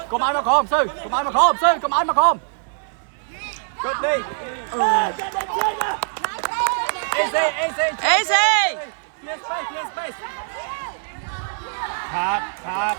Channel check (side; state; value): left; silent; digital silence